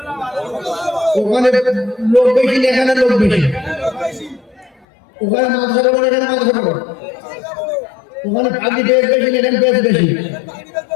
ওখানে লোক বেশি, এখানে লোক বেশি। ওখানে মাদ্রাসা বড়, এখানে মাদ্রাসা বড়। ওখানে পাগড়ি বেশ বেশি, এখানে বেশ বেশি।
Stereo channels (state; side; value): drops out; right; at 4.9 s